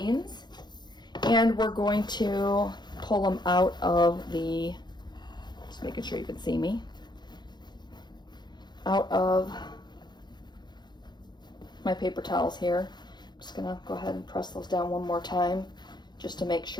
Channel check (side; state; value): right; late; 0.21 ms